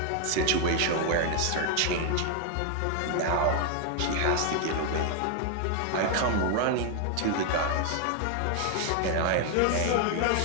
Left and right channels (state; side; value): different; both; correlation 0.00